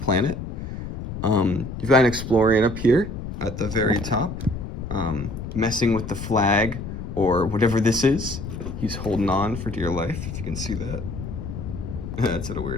planet. You've got an Explorian up here at the very top, messing with the flag or whatever this is. He's holding on for dear life, if you can see that. That's at a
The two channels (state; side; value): noise; left; rumble, 7 dB below the sound